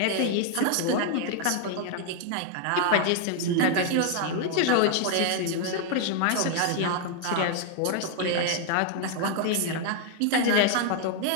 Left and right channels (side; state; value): both; different; correlation 0.00